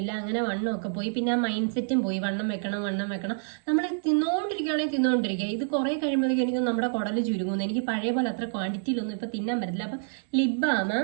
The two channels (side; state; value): left; silent; digital silence